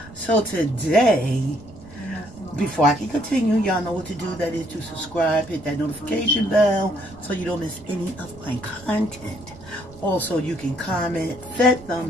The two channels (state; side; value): noise; right; rumble, 20 dB below the sound